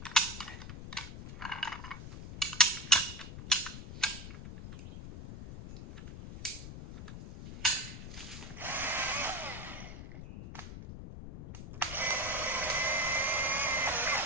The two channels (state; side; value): noise; left; rumble, 10 dB below the sound